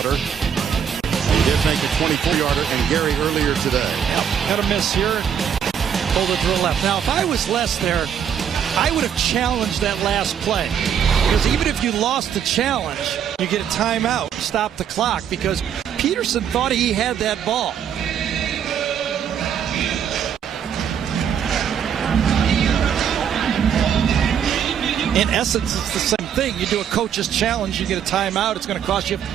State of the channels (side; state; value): left; quieter; 8.3 dB